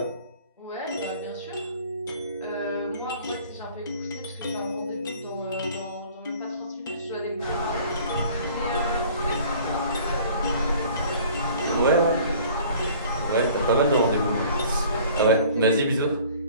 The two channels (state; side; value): inverted; both; correlation -0.50